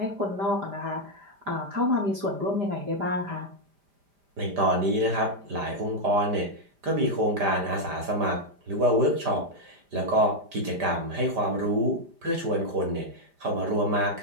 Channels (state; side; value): late; left; 5.0 ms